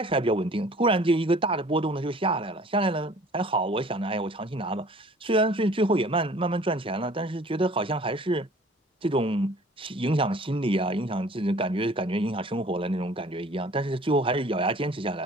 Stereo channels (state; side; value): normal; both; correlation 0.50